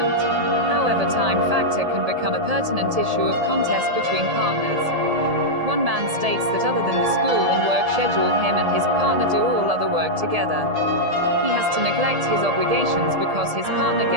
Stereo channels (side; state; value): left; late; 1.7 ms